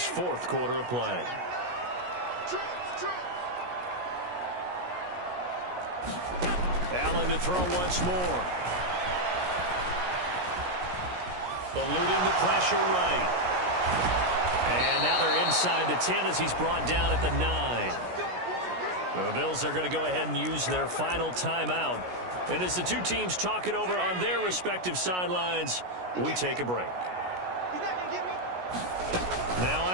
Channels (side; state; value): left; late; 17 ms